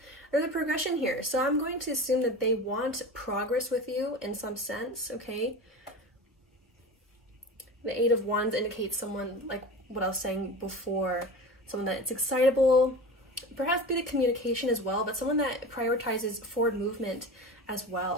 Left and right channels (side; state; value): both; normal; correlation 0.32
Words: there's a progression here. So I'm going to assume that they want progress with you in some sense, okay? The Eight of Wands indicates someone, like what I was saying before, someone that's excitable, perhaps bit of communication as well, but someone that prioritizes forward movement as